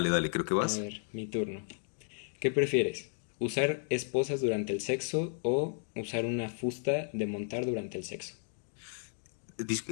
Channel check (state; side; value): silent; right; 55 dB below the other